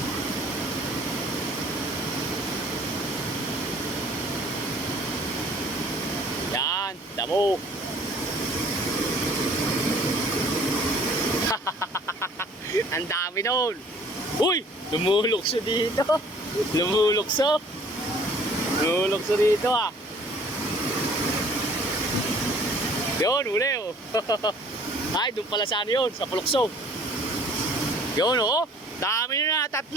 Yan, damo. Ang dami nun. Uy, lumulukso dito. Lumulukso dito ah. Yun, uli oh. Ay, doon pala saan yun, sa Pulukso. Yun oh, dami na, 3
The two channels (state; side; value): normal; both; correlation 0.54